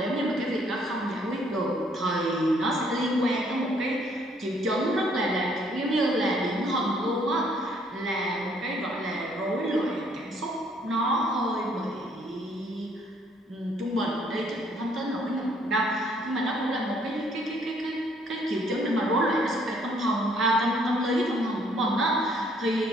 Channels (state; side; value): normal; both; correlation 0.65